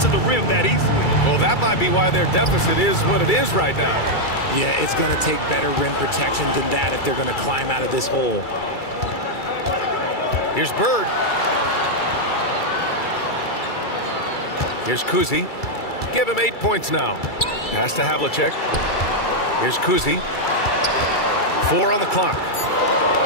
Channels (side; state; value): right; late; 2.3 ms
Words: the rim that easily. Well, that might be why their deficit is what it is right now. Yeah, it's going to take better rim protection than that if they're going to climb out of this hole. Here's Bird. Here's Kuzi. Give him 8 points now. Pass to Havlicek. Here's Kuzi. 4 on the clock.